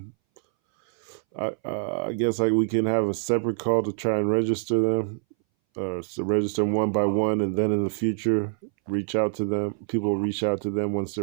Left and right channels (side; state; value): left; silent; 60 dB below the other